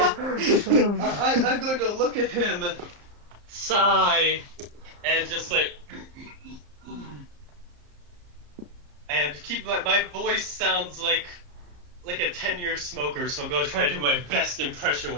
I'm going to look at him, sigh, and just like, and keep my voice sounds like a 10-year smoker. So I'm going to try to do my best impression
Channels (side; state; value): left; late; 35 ms